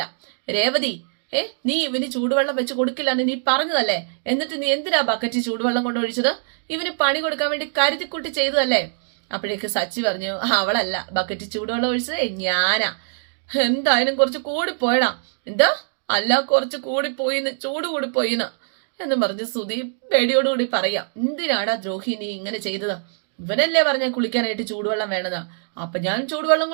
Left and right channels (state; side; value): silent; left; 64 dB below the other